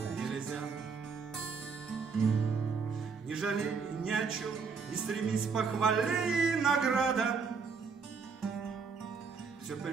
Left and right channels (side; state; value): left; quieter; 5.3 dB